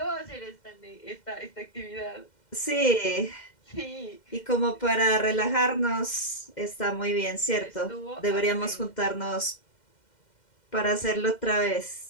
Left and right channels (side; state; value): right; late; 2.1 ms